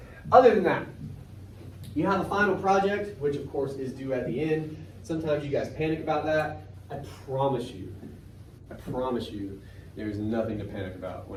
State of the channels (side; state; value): both; identical; correlation 1.00